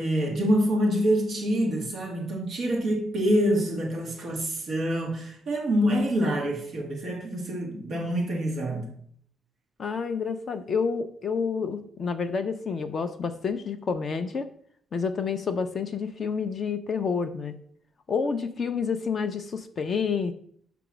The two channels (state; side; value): normal; both; correlation 0.77